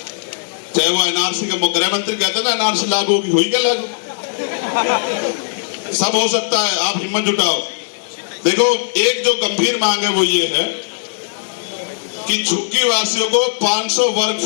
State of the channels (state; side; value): silent; right; digital silence